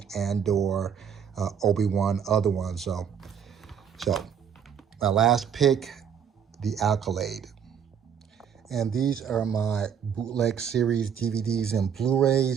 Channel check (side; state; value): left; quieter; 7.8 dB